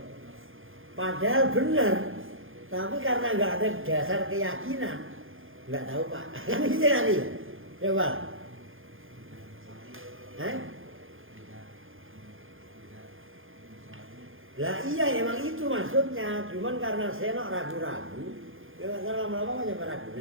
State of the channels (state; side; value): late; left; 0.59 ms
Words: Padahal benar. Tapi karena nggak ada dasar keyakinan, nggak tahu pak. Kan gitu tadi. Coba. Lah iya emang itu maksudnya. Cuman karena saya ragu-ragu, ya lama-lama kan nyampe